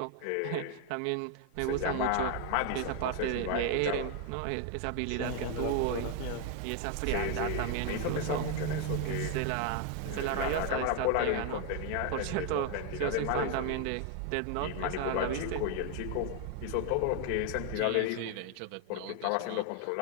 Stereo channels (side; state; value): both; different; correlation 0.01